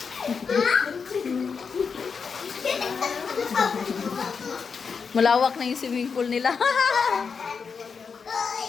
Malawak na yung swimming pool nila.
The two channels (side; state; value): right; quieter; 5.7 dB